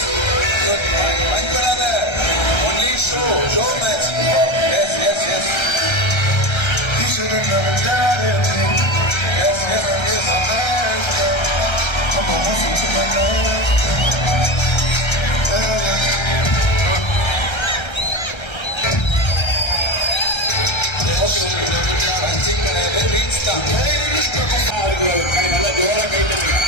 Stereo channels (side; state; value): right; late; 1.3 ms